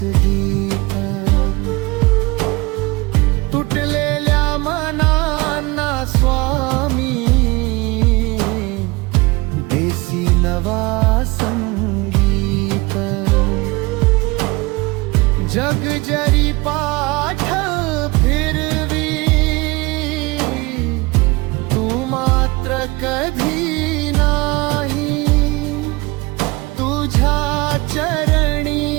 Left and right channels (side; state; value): left; quieter; 23.8 dB